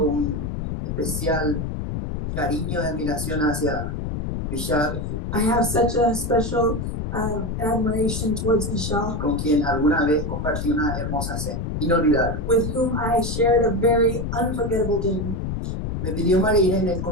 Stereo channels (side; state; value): left; noise; rumble, 3 dB below the sound